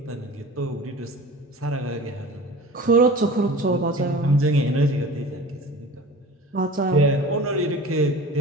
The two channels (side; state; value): both; normal; correlation 0.39